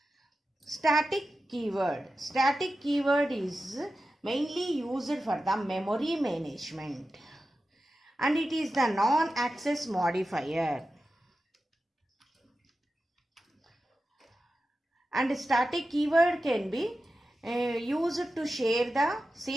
Static keyword. Static keyword is mainly used for the memory management, and it is the non-access modifier. And static keyword can be used to share the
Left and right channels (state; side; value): normal; both; correlation 0.92